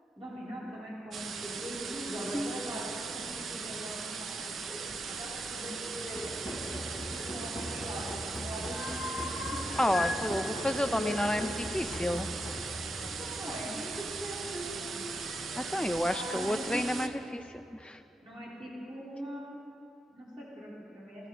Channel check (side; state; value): both; normal; correlation 0.84